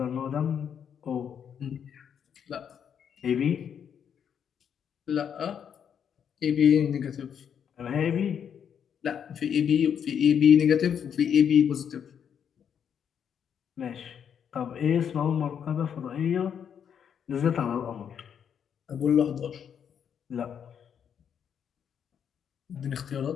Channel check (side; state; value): right; quieter; 8.1 dB